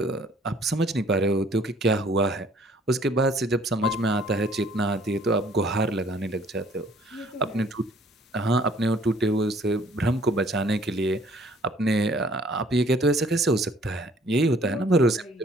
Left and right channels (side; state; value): both; normal; correlation 0.58